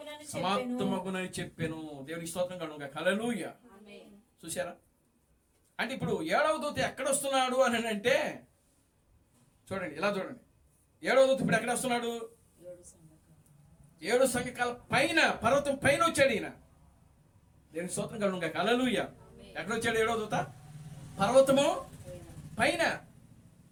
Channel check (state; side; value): identical; both; correlation 1.00